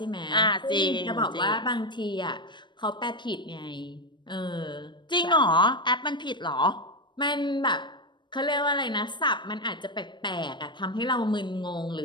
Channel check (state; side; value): late; right; 0.22 ms